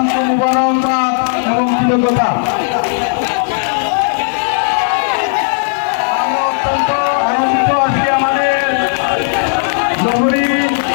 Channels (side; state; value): right; silent; digital silence